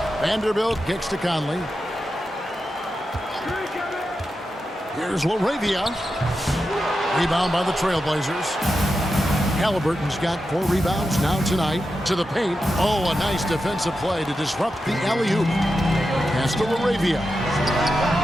Vanderbilt kicks to Conley. Here's LaRavia. Rebound by the Trailblazers. Halliburton's got 4 rebounds now tonight. To the paint. Oh, a nice defensive play to disrupt the alley-oop. Pass to LaRavia.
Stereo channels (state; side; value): normal; both; correlation 0.89